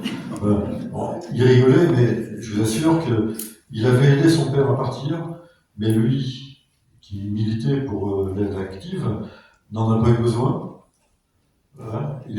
Bon, il rigolait, mais je vous assure qu'il avait aidé son père à partir, mais lui, qui militait pour l'aide active, n'en a pas eu besoin. Voilà. Il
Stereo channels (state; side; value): identical; both; correlation 1.00